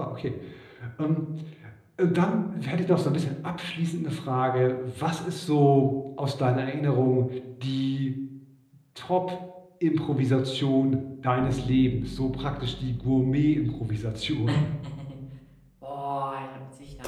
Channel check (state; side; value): identical; both; correlation 1.00